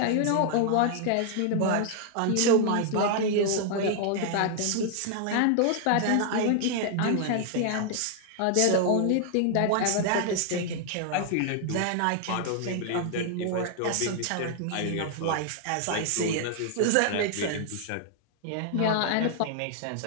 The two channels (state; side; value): different; both; correlation 0.00